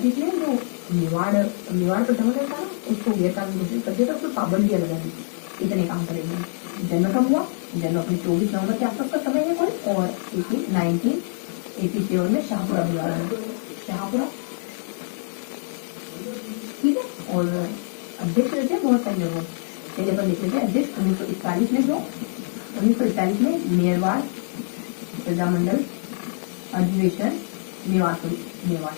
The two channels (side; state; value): right; silent; digital silence